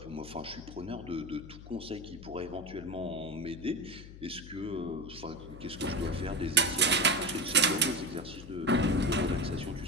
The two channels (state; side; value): noise; left; hum, 15 dB below the sound